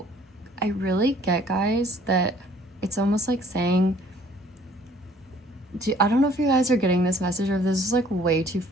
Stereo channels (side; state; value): both; normal; correlation 0.57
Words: I really get, guys, that it's almost like saying, I don't know if you guys are getting this message or if this is like way too